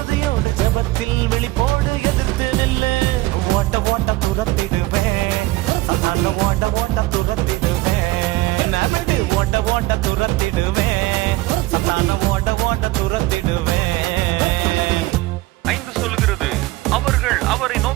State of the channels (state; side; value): quieter; left; 19.1 dB